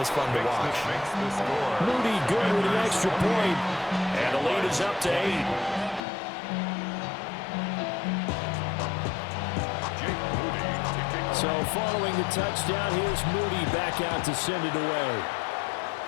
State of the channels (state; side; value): drops out; right; at 6.0 s